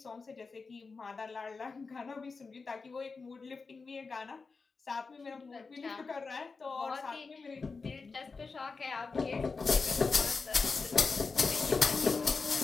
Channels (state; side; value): quieter; right; 4.5 dB